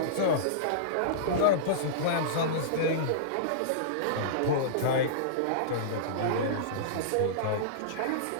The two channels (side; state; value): both; different; correlation -0.03